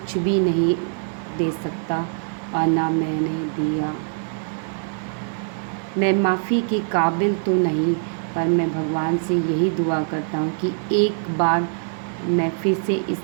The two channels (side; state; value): left; silent; digital silence